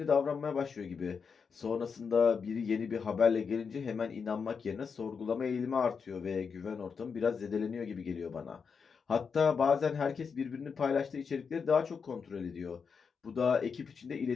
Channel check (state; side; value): quieter; right; 5.8 dB